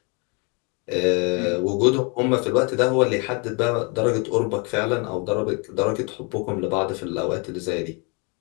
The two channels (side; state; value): right; quieter; 33.0 dB